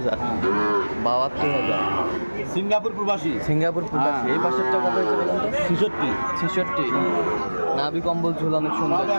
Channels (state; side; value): inverted; both; correlation -1.00